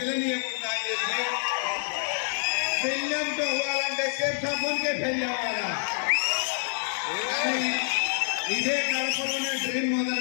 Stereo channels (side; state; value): right; silent; 60 dB below the other